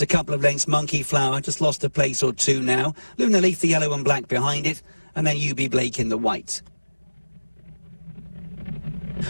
a couple of lengths, Monkey Flower, just lost a place or two now. Luna Leaf, the yellow and black behind it. And then UB Blake in the white.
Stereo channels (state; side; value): inverted; both; correlation -1.00